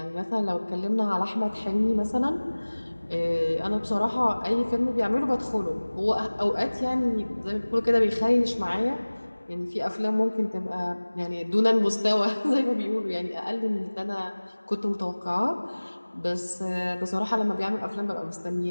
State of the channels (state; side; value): inverted; both; correlation -1.00